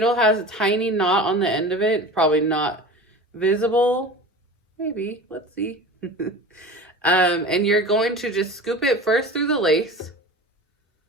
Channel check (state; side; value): normal; both; correlation 0.34